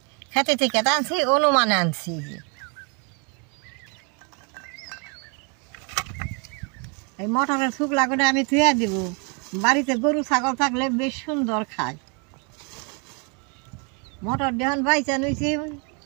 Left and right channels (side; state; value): left; quieter; 35.1 dB